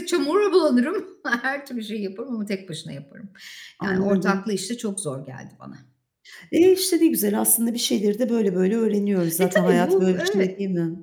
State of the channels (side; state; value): both; identical; correlation 1.00